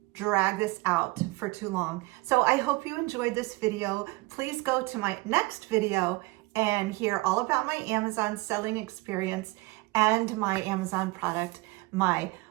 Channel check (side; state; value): left; quieter; 22.9 dB